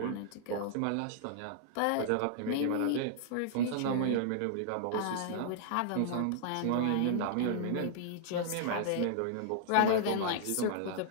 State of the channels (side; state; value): both; different; correlation -0.01